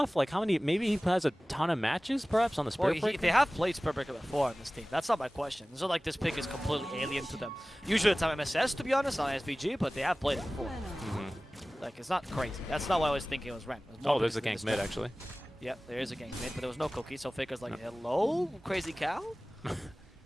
Like how many? Maybe he has a ton of matches, perhaps on the Spirit Breaker. They have played Spirit Breaker before on this team. That's not my question. It's not like this pick is completely alien to them. Usually it's on MSS, to be honest, on SVG, but they have played it before. Like it's not crazy. That's not what I was thinking it was Ren. Oh, there's a gank mid actually. Yep, there is a gank mid, but there was no cookie. So Faker's like, hello, crazy cow.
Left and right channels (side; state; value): both; normal; correlation 0.98